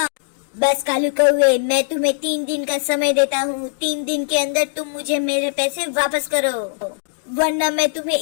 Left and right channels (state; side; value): silent; right; digital silence